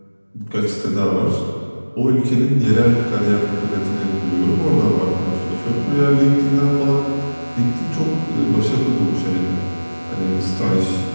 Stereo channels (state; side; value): inverted; both; correlation -1.00